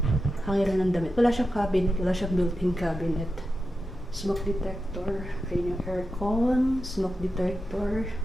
hangiran ng damit. Wala siyang cabinet. Wala siyang built-in cabinet. Smoke detector. Ayun yung aircon. Smoke detector.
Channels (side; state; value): both; normal; correlation 0.90